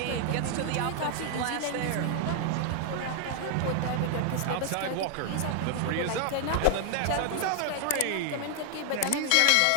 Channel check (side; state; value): both; different; correlation 0.00